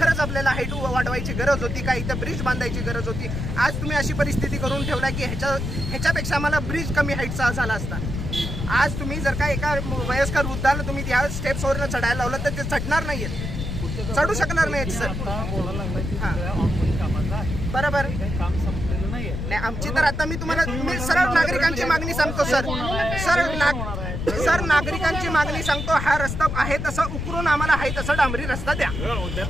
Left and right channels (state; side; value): noise; left; rumble, 4 dB below the sound